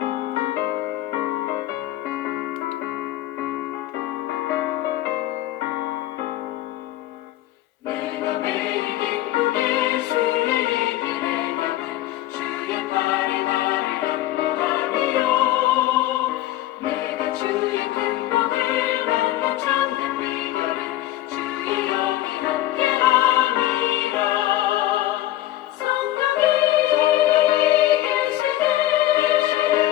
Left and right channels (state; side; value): quieter; right; 14.9 dB